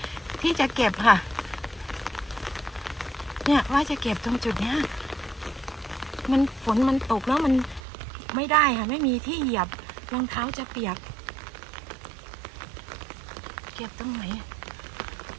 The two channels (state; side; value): drops out; left; at 7.8 s